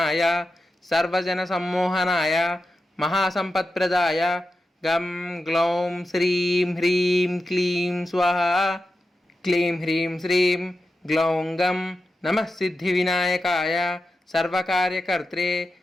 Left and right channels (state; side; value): normal; both; correlation 0.90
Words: सर्वजनसम्मोहनाय महासम्पत्प्रदाय गं ग्लौं श्रीं ह्रीं क्लीं स्वाहा क्लीं ह्रीं श्रीं ग्लौं गं नमः सिद्धिविनायकाय सर्वकार्यकर्त्रे